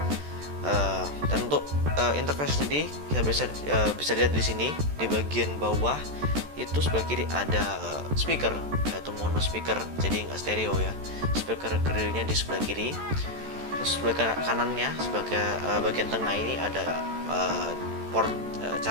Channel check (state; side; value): late; left; 14 ms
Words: Dan untuk interface sendiri kita bisa lihat di sini di bagian bawah itu sebelah kiri ada speaker yaitu mono speaker, jadi nggak stereo ya. Speaker grillnya di sebelah kiri. Terus sebelah kanannya sebagai bagian tengah ini ada port